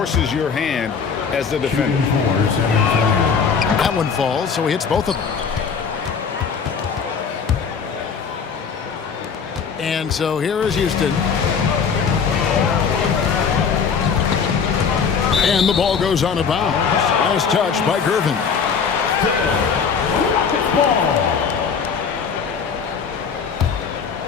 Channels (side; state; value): right; quieter; 6.2 dB